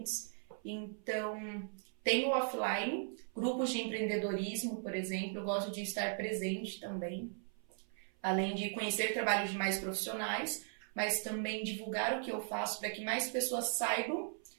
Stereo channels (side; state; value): left; silent; 52 dB below the other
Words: Então, tem o offline, grupos de empreendedorismo, por exemplo, eu gosto de estar presente também, além de conhecer trabalhos de mais profissionais, mas também divulgar o que eu faço para que mais pessoas saibam